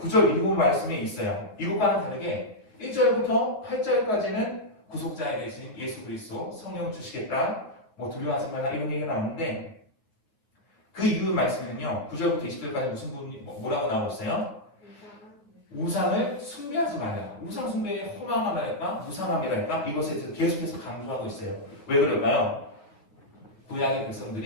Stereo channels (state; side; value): late; right; 9.1 ms